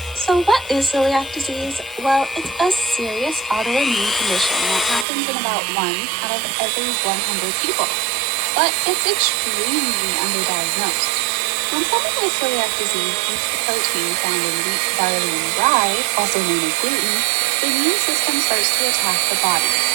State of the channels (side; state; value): left; drops out; at 5.1 s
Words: So what is celiac disease? Well, it's a serious autoimmune condition that happens in about 1 out of every 100 people. But it's extremely underdiagnosed. When someone has celiac disease eats the protein found in wheat, barley, and rye, also known as gluten, the immune system starts to attack the body.